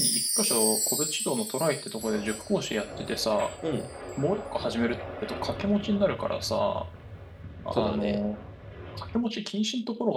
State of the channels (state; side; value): identical; both; correlation 1.00